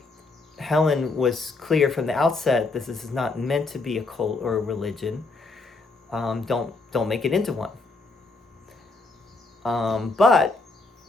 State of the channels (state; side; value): quieter; right; 3.6 dB